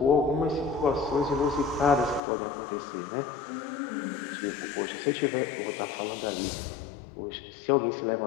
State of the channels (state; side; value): drops out; right; at 2.2 s